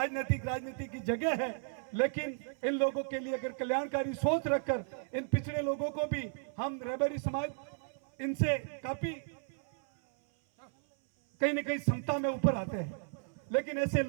की जगह है, लेकिन इन लोगों के लिए अगर कल्याणकारी सोच रखकर इन पिछड़े लोगों को भी, हम रहबरी समाज इनसे काफी कहीं न कहीं समता में ऊपर आते हैं, लेकिन ऐसे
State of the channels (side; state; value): left; silent; 55 dB below the other